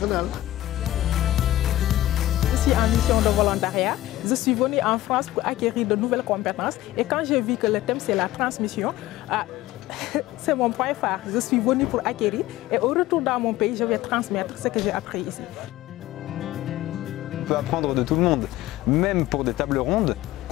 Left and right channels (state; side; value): quieter; right; 15.4 dB